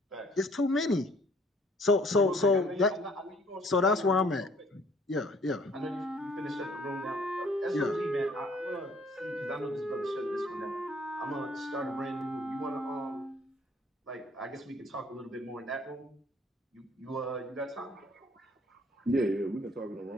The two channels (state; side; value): normal; both; correlation 0.59